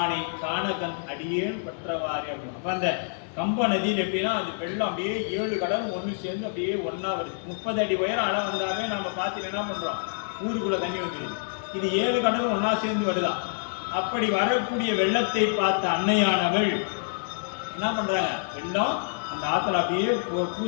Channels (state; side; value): silent; right; digital silence